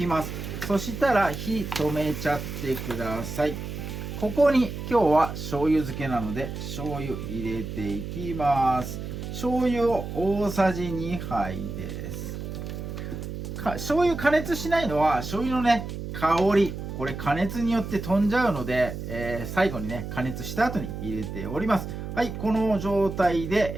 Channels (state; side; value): noise; right; hum, 7 dB below the sound